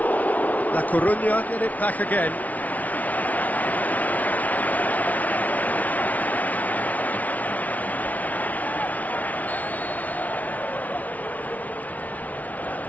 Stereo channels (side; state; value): right; late; 0.073 ms